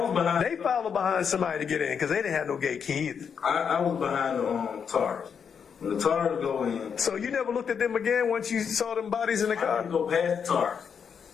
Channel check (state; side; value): quieter; right; 6.9 dB